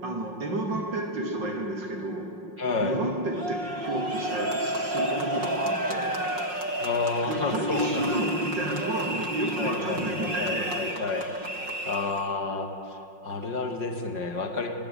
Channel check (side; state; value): left; late; 5.5 ms